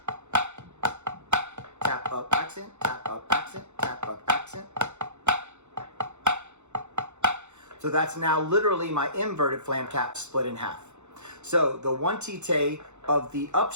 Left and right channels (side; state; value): left; late; 0.83 ms